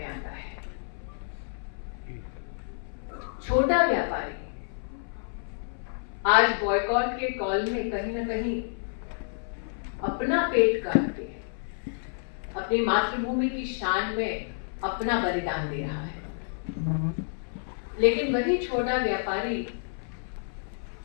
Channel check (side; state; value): right; silent; 58 dB below the other